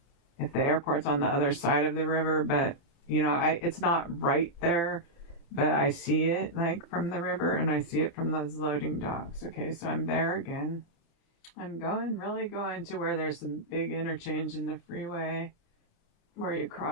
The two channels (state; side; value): late; right; 29 ms